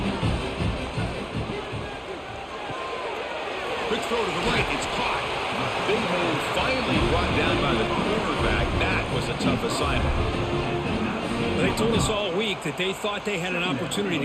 Quick throw to the right, it's caught. Big man finally brought down by the quarterback. That was a tough assignment. They told us all week that they thought they had an opportunity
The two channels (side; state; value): both; identical; correlation 1.00